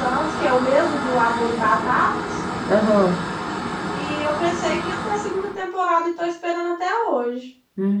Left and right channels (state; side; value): identical; both; correlation 1.00